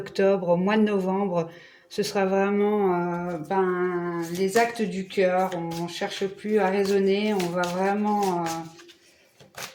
au mois de novembre, ce sera vraiment les actes du cœur. On ne cherche plus à raisonner, on va vraiment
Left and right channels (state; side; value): identical; both; correlation 1.00